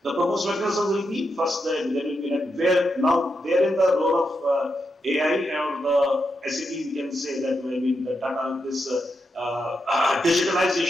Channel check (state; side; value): normal; both; correlation 0.85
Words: The proposed mechanism will be first there will be where in the role of AI or the SAP, we can say that the data, this